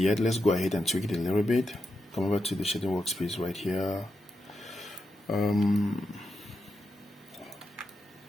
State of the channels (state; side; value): normal; both; correlation 0.86